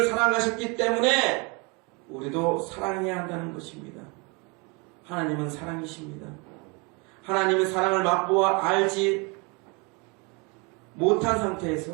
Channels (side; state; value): left; quieter; 30.2 dB